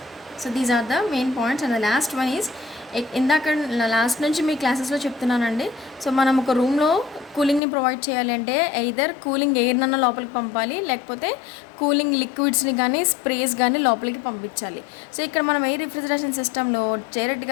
and the last one is, ఇందాక లాస్ట్ నుంచి మీ క్లాసెస్లో చెప్తున్నానండి. సో మనం ఒక రూమ్లో కూలింగ్ని ప్రొవైడ్ చేయాలి అంటే ఎయిదర్ కూలింగ్ ఎయిర్నన్నా లోపలికి పంపాలి, లేకపోతే కూలింగ్ లిక్విడ్స్ని కానీ స్ప్రేస్ కానీ లోపలికి పంపించాలి. సో ఇక్కడ మనం ఎయిర్ రిఫ్రిజరేషన్ సిస్టంలో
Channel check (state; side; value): drops out; right; at 7.6 s